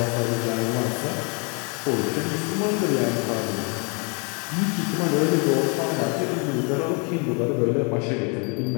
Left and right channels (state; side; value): quieter; right; 34.9 dB